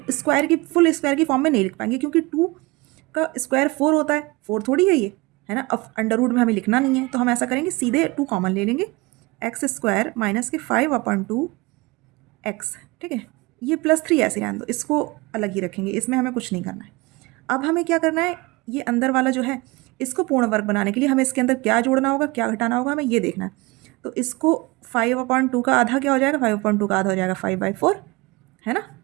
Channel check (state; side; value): quieter; left; 23.9 dB